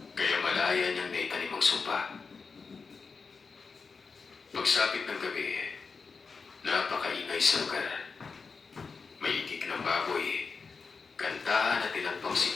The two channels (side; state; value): right; quieter; 4.9 dB